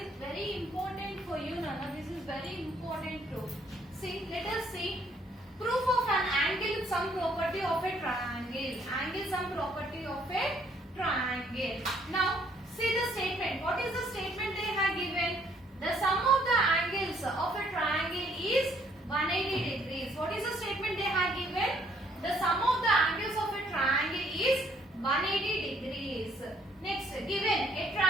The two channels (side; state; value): both; normal; correlation 0.66